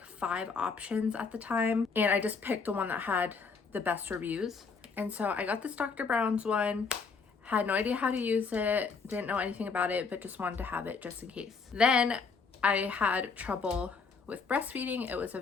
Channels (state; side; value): quieter; right; 5.0 dB